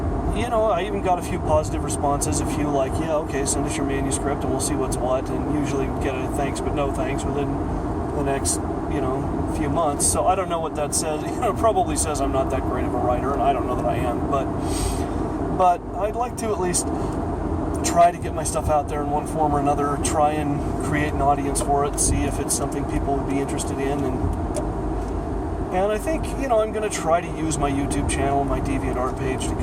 I even got a few positive responses, a few like, yeah, okay, send us your manuscript and we'll see what's what, and usually get a thanks but no thanks within the next, few months. So I don't know what that says. It probably says I'm not that great of a writer, and I don't know that I am, but I'd like to at least try to get my stuff out there in one form or another, try and create an audience for it, see if it's something people would be interested in, and I think, I'm going to try to use my YouTube channel, my DeviantArt page, to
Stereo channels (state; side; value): identical; both; correlation 1.00